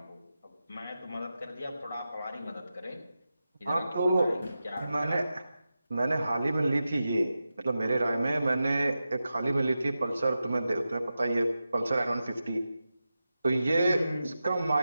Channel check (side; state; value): both; inverted; correlation -0.92